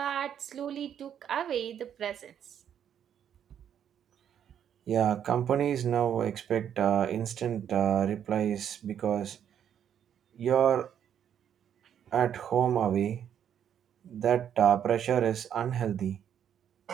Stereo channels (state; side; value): quieter; left; 9.2 dB